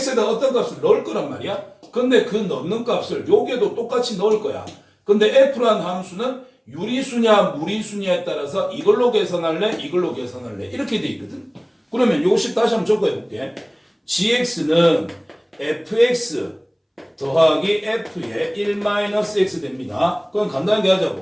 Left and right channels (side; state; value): both; identical; correlation 1.00